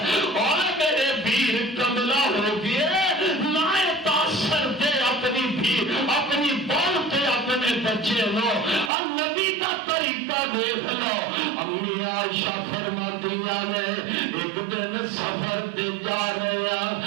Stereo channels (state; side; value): drops out; left; at 8.9 s